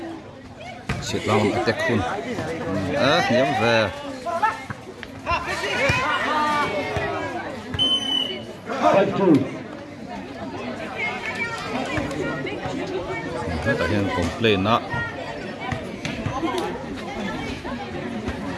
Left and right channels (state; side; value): identical; both; correlation 1.00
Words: sit down attack hun hiam ve ta hian complain na